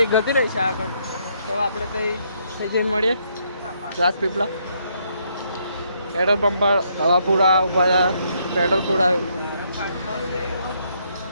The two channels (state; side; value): inverted; both; correlation -0.73